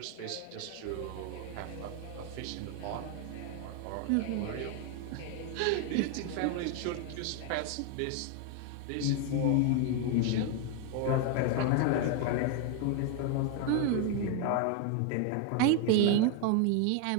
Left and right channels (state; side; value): different; both; correlation 0.01